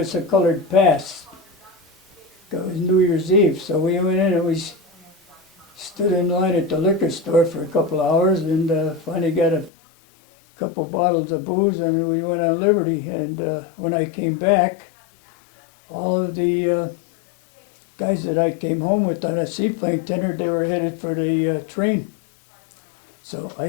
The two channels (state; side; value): drops out; right; at 9.7 s